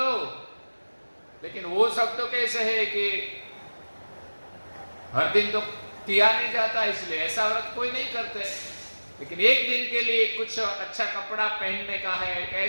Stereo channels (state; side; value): inverted; both; correlation -1.00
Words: लेकिन वो सब तो कैसे है कि हर दिन तो किया नहीं जाता, इसलिए ऐसा व्रत कोई नहीं करते। लेकिन एक दिन के लिए कुछ अच्छा कपड़ा पहनने का है,